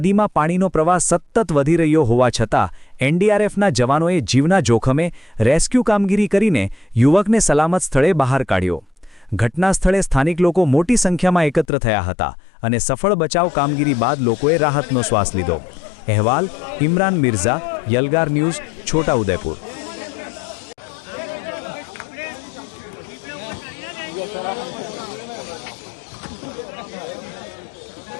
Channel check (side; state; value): right; drops out; at 11.7 s